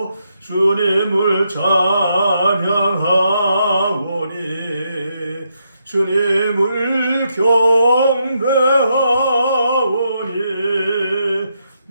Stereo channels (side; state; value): both; inverted; correlation -0.80